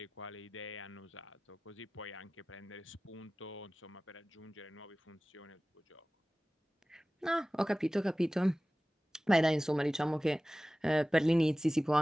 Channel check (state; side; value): normal; both; correlation 0.97